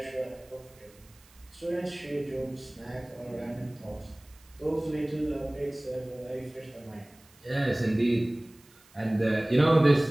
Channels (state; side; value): noise; right; hiss, 28 dB below the sound